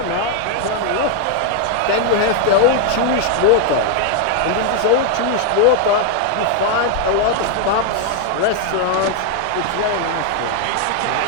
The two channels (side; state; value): both; different; correlation 0.00